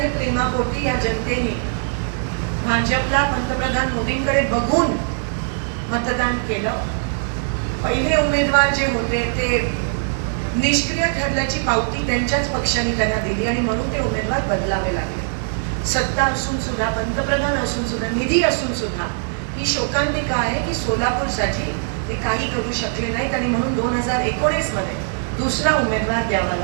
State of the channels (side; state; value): left; silent; digital silence